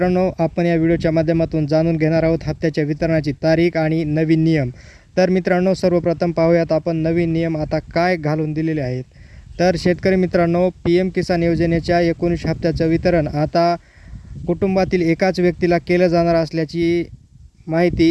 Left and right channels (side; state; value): both; identical; correlation 1.00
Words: आपण या व्हिडिओच्या माध्यमातून जाणून घेणार आहोत हप्त्याच्या वितरणाची तारीख आणि नवीन नियम. तर मित्रांनो, सर्वप्रथम पाहूयात आपण नवीन नियम आता काय घालून दिलेले आहेत. तर शेतकरी मित्रांनो, पी-एम किसान योजनेच्या 19 हप्त्याचं वितरण आता कुटुंबातील एकाच व्यक्तीला केलं जाणार असल्याची